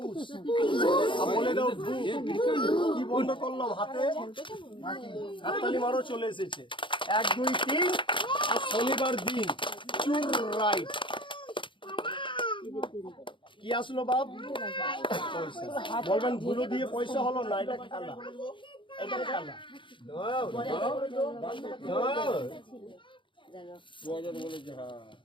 বলে দাও ভু। কি বন্ধ করলাম হাতে? হাততালি মারো, চলে এসেছে 1 2 3। আর শনিবার দিন চুর রাইট। কি আসলো বাপ? পয়সা। বলবেন ধুলো দিয়ে পয়সা হলো না, এটা খেলা। এটা খেলা।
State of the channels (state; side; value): late; right; 0.24 ms